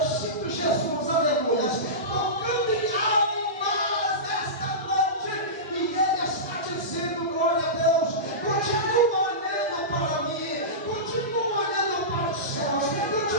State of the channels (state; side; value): normal; both; correlation -0.19